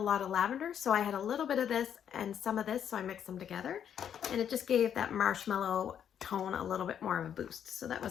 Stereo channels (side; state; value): right; quieter; 8.9 dB